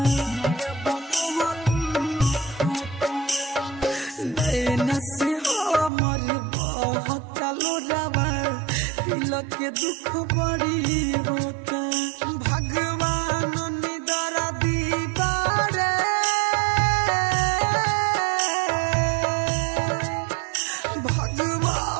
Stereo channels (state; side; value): drops out; left; at 5.9 s